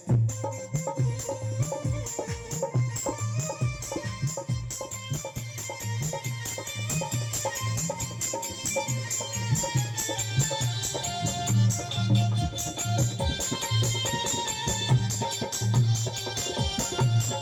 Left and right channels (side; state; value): both; identical; correlation 1.00